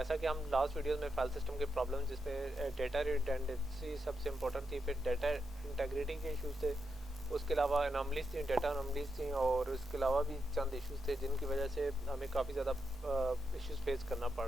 कि हम लास्ट वीडियोस में फाइल सिस्टम के प्रॉब्लम, जिसमें डेटा रिडेंडेंसी सबसे इंपॉर्टेंट थी, फिर डेटा इंटेग्रिटी के इश्यूज थे, उसके अलावा अनॉमलीज थी, डेटा अनॉमलीज थी, और उसके अलावा भी चंद इश्यूज थे जिनकी वजह से हमें काफ़ी ज़्यादा इश्यूज फेस करना पड़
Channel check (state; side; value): normal; both; correlation 0.85